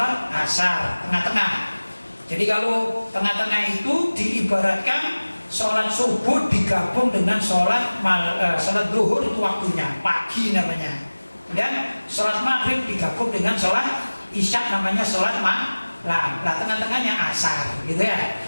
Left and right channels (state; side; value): inverted; both; correlation -1.00